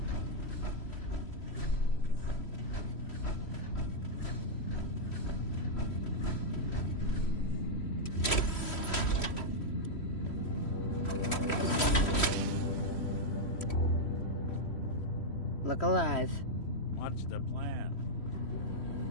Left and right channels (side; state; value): right; late; 3.1 ms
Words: Look alive. What's the plan?